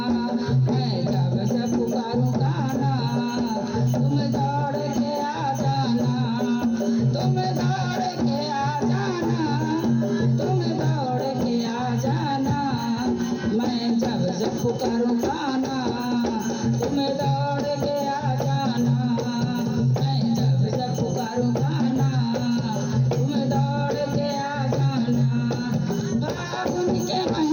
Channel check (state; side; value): identical; both; correlation 1.00